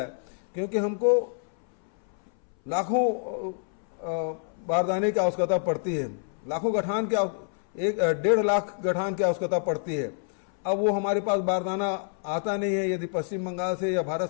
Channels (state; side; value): silent; right; 60 dB below the other